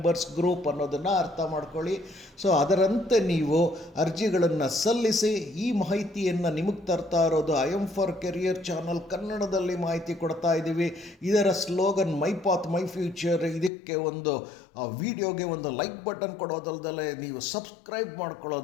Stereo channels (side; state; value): right; drops out; at 13.7 s